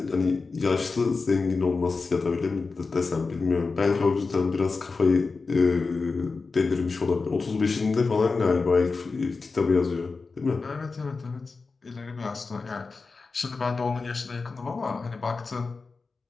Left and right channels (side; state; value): right; quieter; 4.2 dB